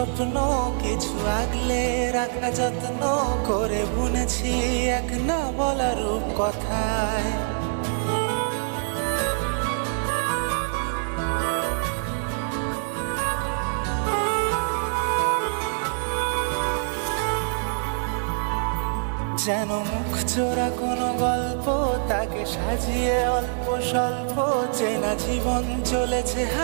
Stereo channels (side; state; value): left; silent; 62 dB below the other